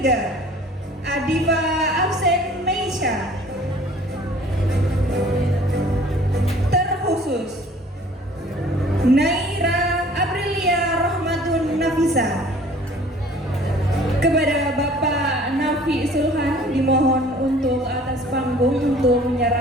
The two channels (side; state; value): both; normal; correlation 0.51